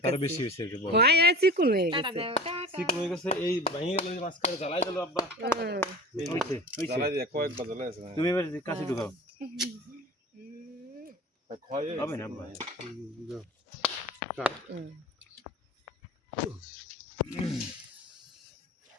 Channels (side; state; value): both; normal; correlation 0.37